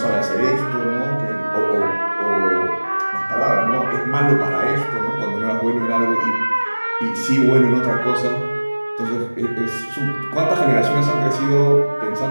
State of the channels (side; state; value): both; inverted; correlation -1.00